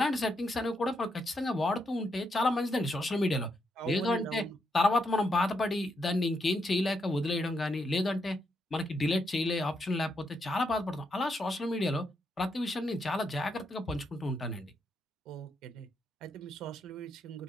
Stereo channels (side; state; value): both; normal; correlation 0.80